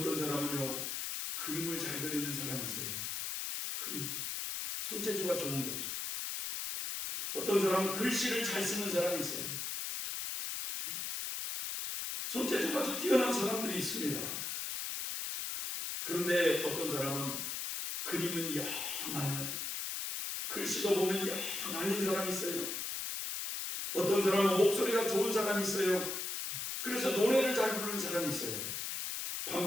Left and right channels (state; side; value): noise; left; hiss, 3 dB below the sound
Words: 사람은요, 그림을 잘 그리는 사람이 있어요. 그림, 손재주가 좋은 거지. 어떤 사람은 글씨를 잘 쓰는 사람이 있어요. 손재주가 아주 뛰어난 사람들이 있습니다. 그런데 어떤 사람은 그림은 영 아니야. 글씨도 보면 영 아닌 사람이 있어요. 어떤 사람은 목소리가 좋은 사람이 있어요. 그래서 노래를 잘 부르는 사람이 있어요.